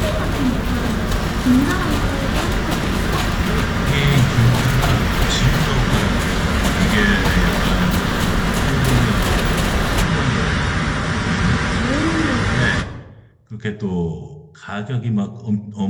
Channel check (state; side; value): identical; both; correlation 1.00